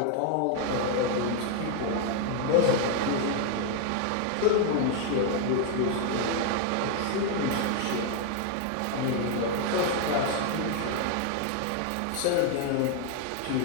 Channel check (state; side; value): different; both; correlation 0.00